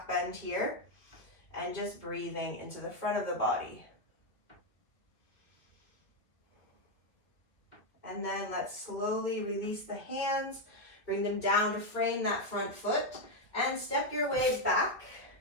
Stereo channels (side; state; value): right; late; 1.9 ms